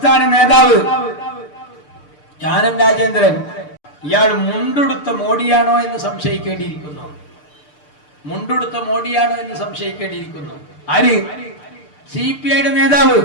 നേതാവ് കാനം രാജേന്ദ്രൻ, ഇയാൾ മുണ്ടെടുത്ത മോഡിയാണോ എന്ന് സംശയിക്കേണ്ടിയിരിക്കുന്നു. മുണ്ടെടുത്ത മോഡിയാണോ എന്ന് സംശയിക്കേണ്ടിയിരിക്കുന്നു. ആര്? CPIയുടെ നേതാവ്.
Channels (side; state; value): right; late; 6.7 ms